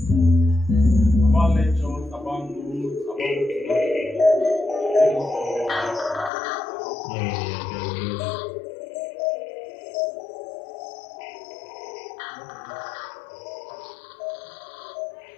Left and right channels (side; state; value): right; drops out; at 6.3 s